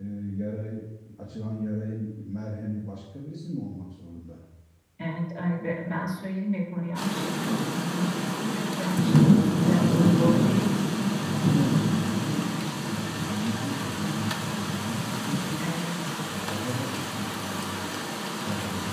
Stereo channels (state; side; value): identical; both; correlation 1.00